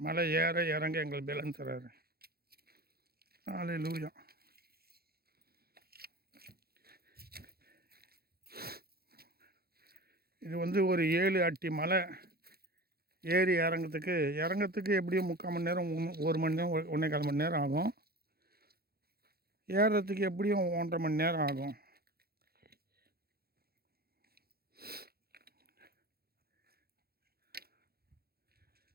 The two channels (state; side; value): late; left; 0.45 ms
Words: ஏற இறங்க எங்களுக்கு பலன் தராரு. ஹல்லேலூயா. இது ஒரு 7 அடி மலை ஏறி இறங்கிறதுக்கு எப்படியும் 3/4 மணி நேரம், 1 மணி நேரம், 1.25 மணி நேரம் ஆகும். ஏறுறதுக்கு எப்படியும் 1.5 மணி நேரம் ஆகும்.